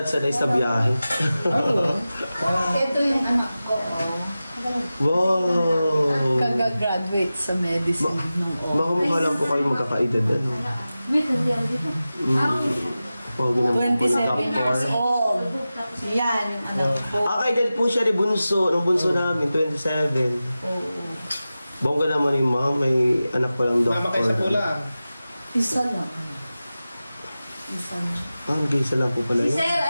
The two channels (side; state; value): both; inverted; correlation -0.95